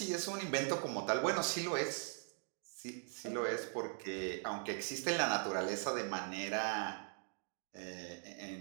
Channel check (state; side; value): silent; left; 51 dB below the other